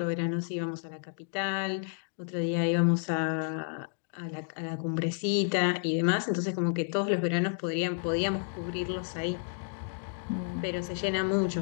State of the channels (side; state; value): right; silent; digital silence